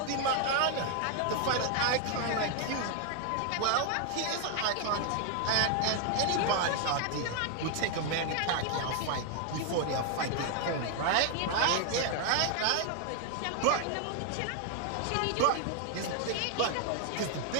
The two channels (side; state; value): both; different; correlation 0.00